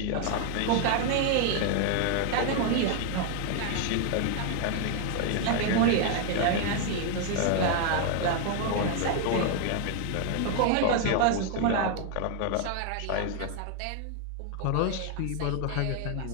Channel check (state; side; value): different; both; correlation 0.00